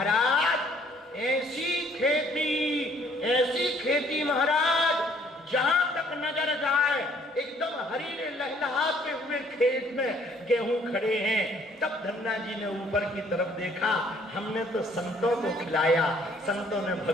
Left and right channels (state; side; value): normal; both; correlation 0.61